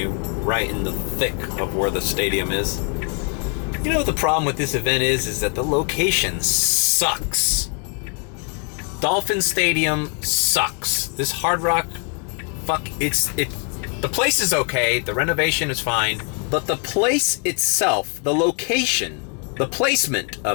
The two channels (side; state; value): right; quieter; 39.1 dB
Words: right in the thick of where the stadium is. You know what the problem with this event is that the location sucks. Dolphin Stadium sucks. This Hard Rock, the place is okay, the renovation is fine, But the place itself, the location, the placement